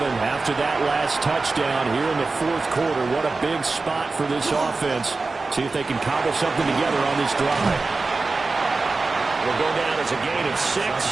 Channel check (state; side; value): quieter; left; 3.8 dB